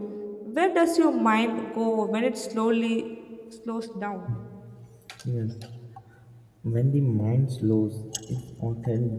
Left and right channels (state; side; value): identical; both; correlation 1.00